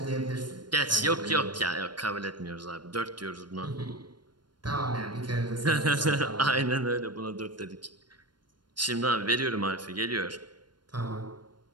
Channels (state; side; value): late; left; 0.71 ms